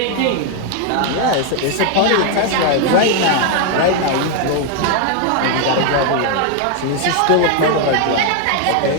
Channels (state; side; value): different; both; correlation 0.01